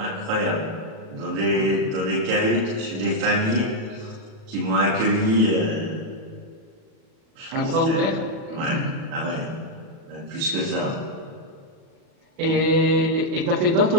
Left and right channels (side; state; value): left; late; 37 ms